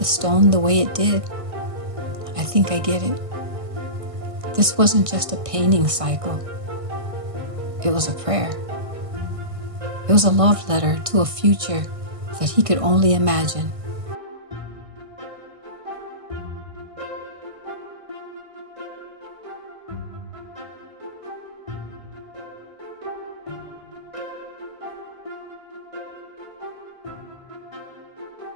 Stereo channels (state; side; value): late; left; 1.6 ms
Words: stone the way it did, I think I get it. This wasn't just a painting cycle. It was a prayer. It was a love letter to a future that he could only imagine.